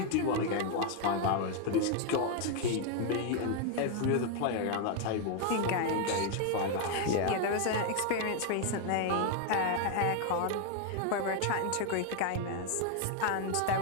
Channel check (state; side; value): different; both; correlation 0.01